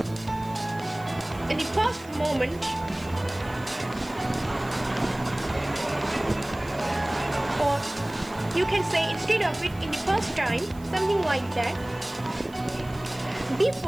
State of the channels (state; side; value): noise; right; hiss, 23 dB below the sound